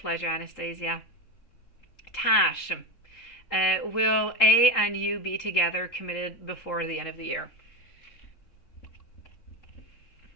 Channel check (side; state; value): right; late; 3.7 ms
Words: pleasure, Anastasia. Tash, will A and you be together, committed before the end of the year?